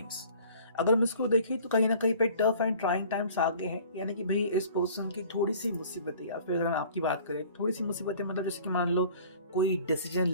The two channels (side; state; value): both; inverted; correlation -0.49